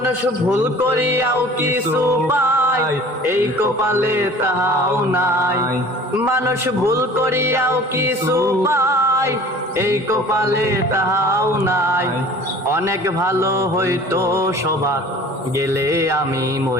ভুল করিয়াও কিছু পায়, এই কপালে তাহাও নাই। মানুষ ভুল করিয়াও কিছু পায়, এই কপালে তাহাও নাই। অনেক ভালো হইতো সবার গেলে আমি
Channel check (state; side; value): normal; both; correlation 0.46